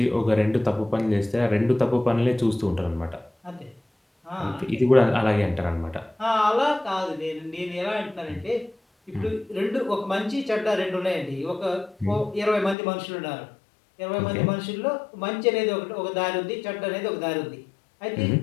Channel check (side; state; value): right; drops out; at 12.8 s